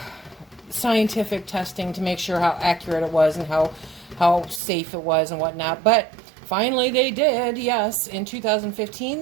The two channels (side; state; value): left; drops out; at 4.6 s